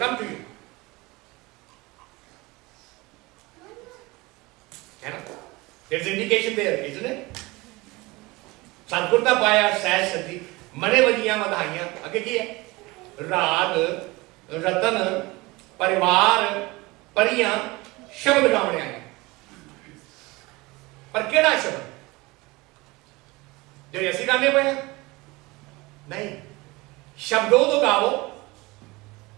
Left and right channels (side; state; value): left; quieter; 22.8 dB